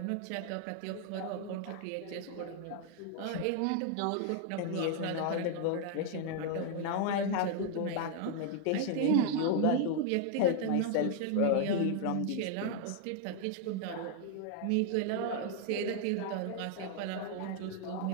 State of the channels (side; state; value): both; different; correlation 0.00